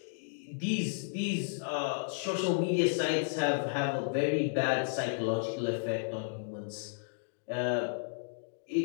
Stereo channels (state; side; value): silent; right; digital silence